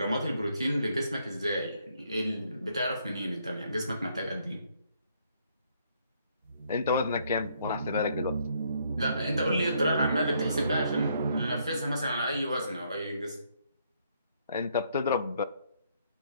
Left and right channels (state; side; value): inverted; both; correlation -0.70